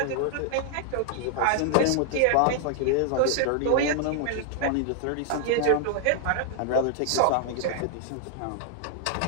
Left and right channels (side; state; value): both; different; correlation 0.00